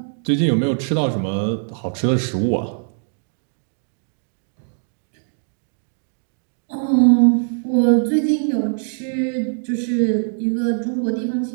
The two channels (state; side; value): silent; left; digital silence